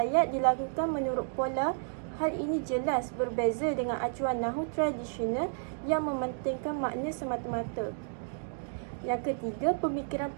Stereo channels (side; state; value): left; silent; digital silence